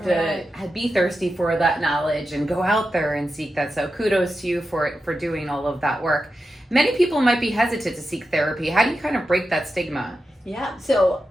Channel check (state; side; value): normal; both; correlation 0.90